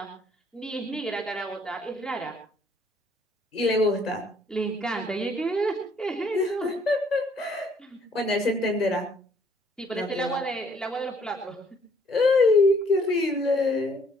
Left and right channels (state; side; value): normal; both; correlation 0.63